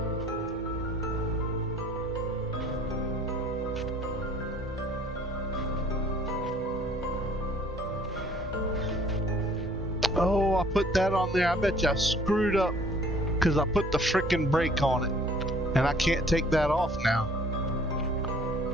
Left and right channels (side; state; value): both; normal; correlation 0.55